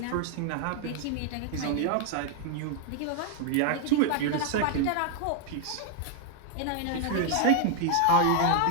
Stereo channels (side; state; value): both; different; correlation 0.00